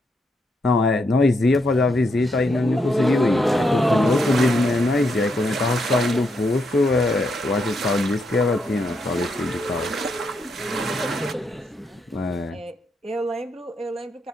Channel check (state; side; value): normal; both; correlation 0.79